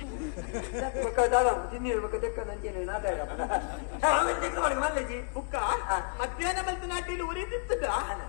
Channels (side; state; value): right; silent; 57 dB below the other